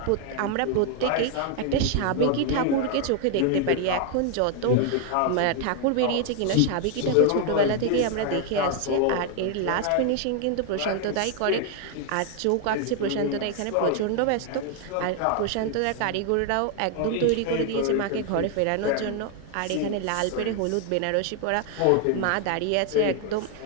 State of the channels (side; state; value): both; different; correlation 0.00